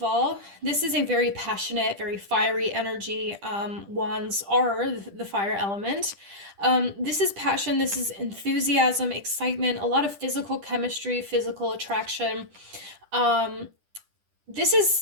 all, this is a very passionate, very fiery energy. Wands are the fire element. This is passion, this is enthusiasm, excitement, a lot of physical chemistry, physical attraction. This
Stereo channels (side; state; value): left; late; 10 ms